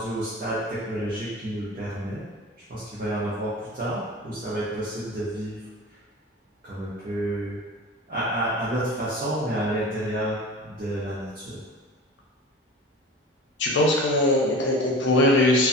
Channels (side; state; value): both; normal; correlation 0.36